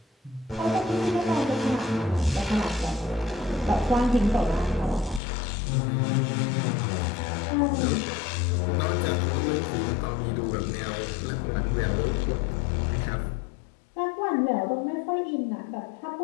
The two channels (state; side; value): drops out; right; at 5.2 s